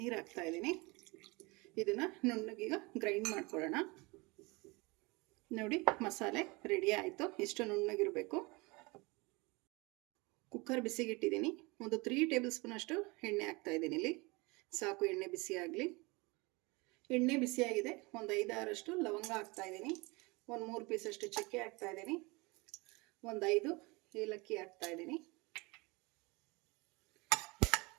ನೀರು ಹಾಕ್ತಾ ಇದ್ದೀನಿ. ಇದನ್ನು ನುಣ್ಣಗೀಗ ಗ್ರೈಂಡ್ ಮಾಡ್ಕೊಳ್ಳೋಣ. ನೋಡಿ, ಮಸಾಲೆ ರೆಡಿ ಆಯಿತು. ಇಷ್ಟು ನುಣ್ಣಗಿರಬೇಕು. ಕುಕ್ಕರ್ ಬಿಸಿಗಿಟ್ಟಿದ್ದೀನಿ. ಒಂದು 3 ಟೇಬಲ್ ಸ್ಪೂನ್ ಅಷ್ಟು ಎಣ್ಣೆ ಹಾಕ್ತಾ ಇದ್ದೀನಿ. ಇಲ್ಲಿ ಸಾಕು, ಎಣ್ಣೆ ಬಿಸಿ ಆಗಲಿ. ಎಣ್ಣೆ ಬಿಸಿಯಾಗಿದೆ. ಒಂದು 5-6 ಲವಂಗ ಹಾಕ್ತಾ ಇದ್ದೀನಿ. ಒಂದು 3 ಪೀಸ್ ಅಷ್ಟು ಚಕ್ಕೆ ಹಾಕ್ತಾ ಇದ್ದೀನಿ. ಒಂದು 5 ಏಲಕ್ಕಿ ಹಾಕ್ತಾ ಇದ್ದೀನಿ.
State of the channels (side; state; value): left; quieter; 25.8 dB